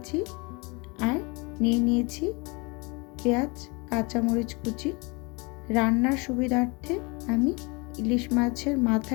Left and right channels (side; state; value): right; quieter; 28.3 dB